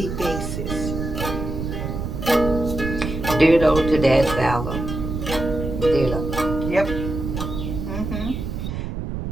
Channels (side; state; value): right; noise; rumble, 5 dB below the sound